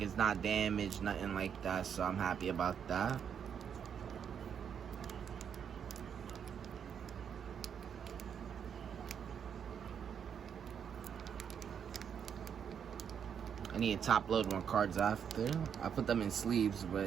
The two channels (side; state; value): left; quieter; 7.8 dB